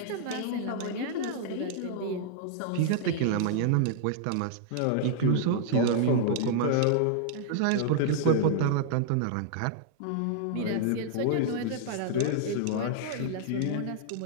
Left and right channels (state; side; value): different; both; correlation -0.01